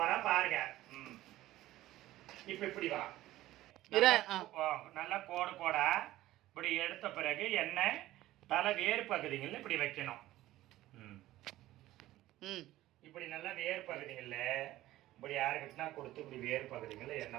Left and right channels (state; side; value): quieter; left; 15.6 dB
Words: போறா பாருங்க. இப்ப இப்படி வா, நல்லா கோடு கோடா இப்படி எடுத்த பிறகு எண்ணெய் தலை வேறு பகுதிகளில் இப்படி வைக்கணும். இப்படி நல்லா வேறு பகுதிகளில் இப்படி யாருக்கிட்டனா கொடுத்து இப்படி வேறு பகுதிகளில்